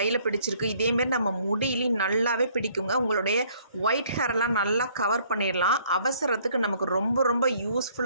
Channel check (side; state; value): both; inverted; correlation -0.61